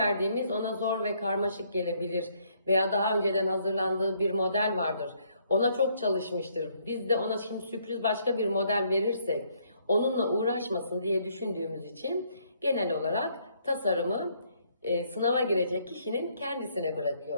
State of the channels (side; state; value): both; inverted; correlation -0.68